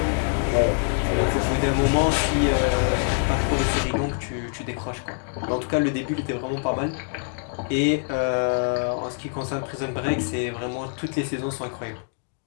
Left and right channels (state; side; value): silent; right; 62 dB below the other